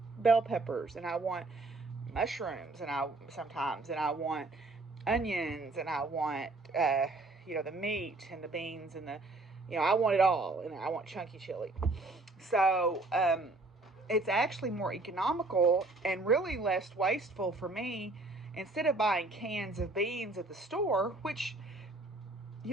bell peppers, and I want mushrooms, and I want onions, and I want the meat and the beans and I want it all, and I want chunky chili. So it's actually more economical and really less wasteful for me. Instead of buying cans of beans at the store, which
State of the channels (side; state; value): left; quieter; 3.1 dB